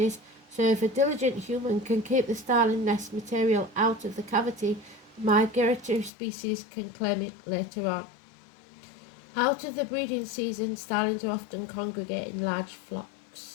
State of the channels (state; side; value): drops out; right; at 6.1 s